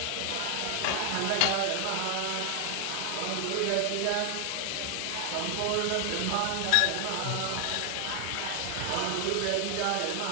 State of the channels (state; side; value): different; both; correlation 0.00